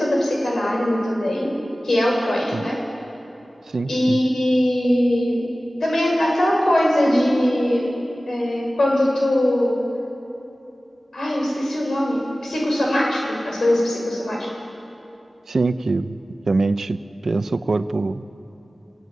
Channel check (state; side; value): normal; both; correlation 0.96